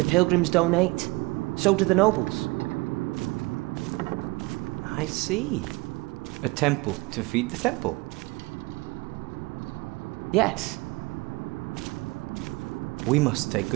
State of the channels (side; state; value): left; quieter; 24.3 dB